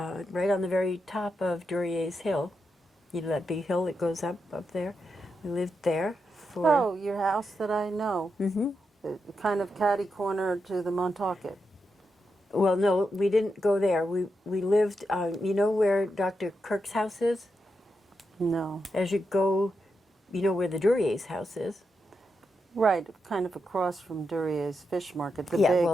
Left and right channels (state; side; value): normal; both; correlation 0.85